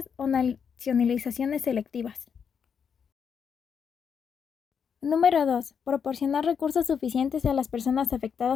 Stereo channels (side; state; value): right; quieter; 6.9 dB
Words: o nacionalizaciones selectivas. Número 2. Proporcionar recursos suficientes a las personas